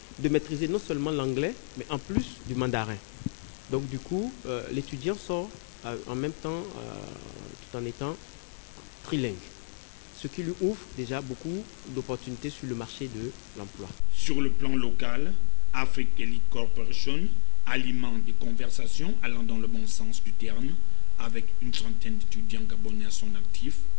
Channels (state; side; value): silent; right; 56 dB below the other